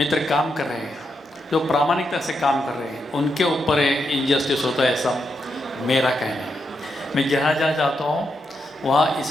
काम कर रहे हैं, जो प्रामाणिकता से काम कर रहे हैं, उनके ऊपर इनजस्टिस होता है, ऐसा मेरा कहना है। मैं जहाँ जहाँ जाता हूँ वहाँ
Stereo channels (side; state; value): both; normal; correlation 0.83